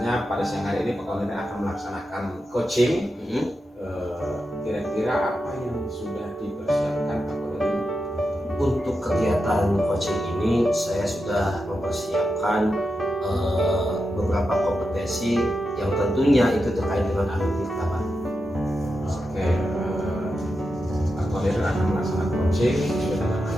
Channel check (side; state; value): both; normal; correlation 0.88